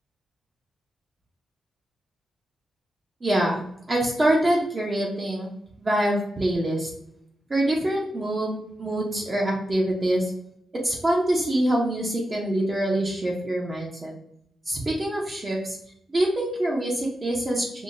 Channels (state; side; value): normal; both; correlation 0.89